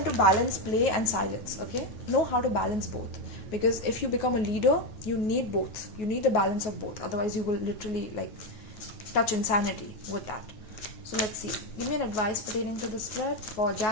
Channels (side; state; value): right; late; 9.4 ms